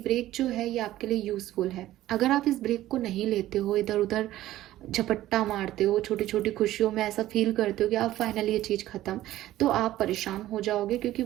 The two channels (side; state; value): left; quieter; 14.6 dB